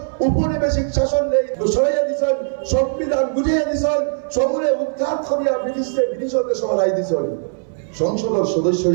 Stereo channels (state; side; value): silent; left; 61 dB below the other